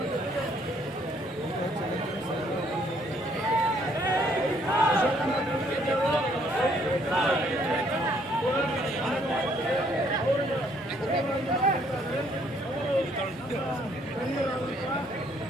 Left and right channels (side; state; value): both; normal; correlation 0.66